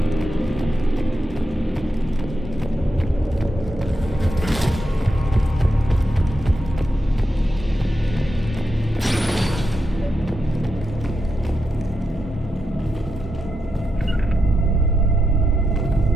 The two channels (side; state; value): both; normal; correlation 0.86